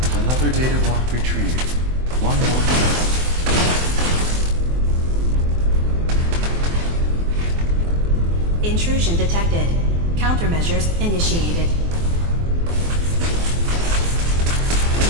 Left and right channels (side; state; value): left; late; 24 ms